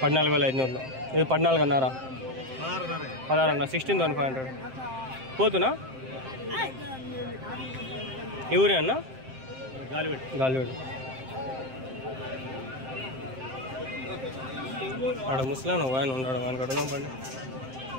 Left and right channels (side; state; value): left; late; 7.6 ms